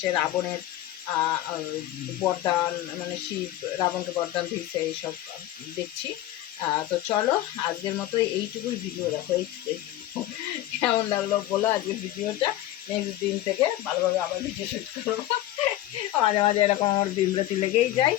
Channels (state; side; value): quieter; right; 14.5 dB